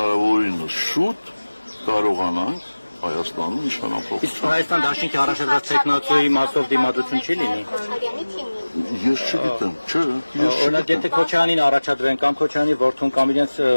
շուտ կարողանանք Հայաստանում իշխանապահ։ Իսկ Հայաստան դաշինքի առաջադրած տեխնացուի մասով դիմադրություն չի լինի։ Ես չգիտեմ, չէ։ Օրինակ եթե Քոչարյանին առաջադրեն կամ Քոչարյանի որդուն կամ իրենց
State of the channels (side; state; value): both; inverted; correlation -1.00